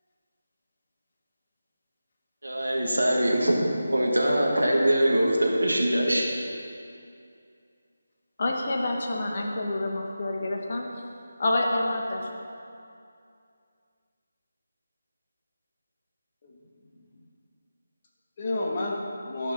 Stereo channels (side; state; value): both; inverted; correlation -0.93